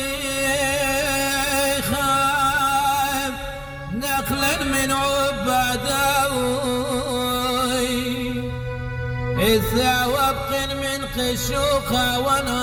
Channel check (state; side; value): identical; both; correlation 1.00